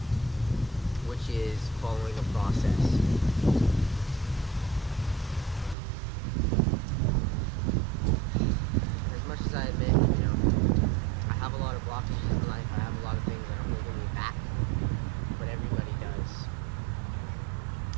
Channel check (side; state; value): left; drops out; at 5.8 s